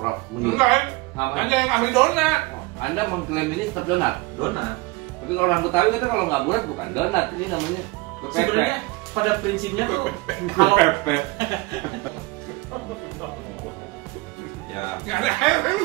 Enggak, tanya yang ahli donat. Anda mengklaim ini tetap donat? Donat. Tapi orang Betawi kata kalau nggak bulat bukan donat, ini namanya sebenarnya pada prinsipnya tuh kalau ya nggak ada air.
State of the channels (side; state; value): left; quieter; 23.4 dB